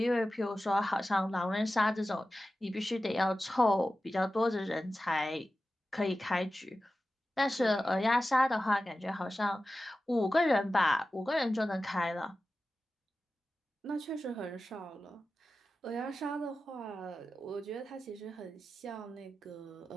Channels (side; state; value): both; normal; correlation 0.94